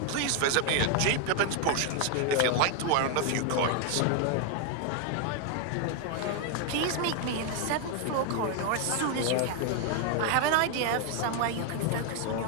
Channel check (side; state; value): both; different; correlation 0.01